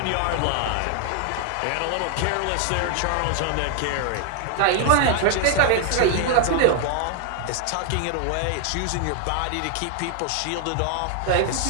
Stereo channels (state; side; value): different; both; correlation 0.00